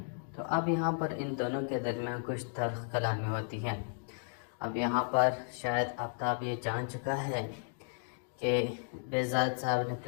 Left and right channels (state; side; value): silent; right; digital silence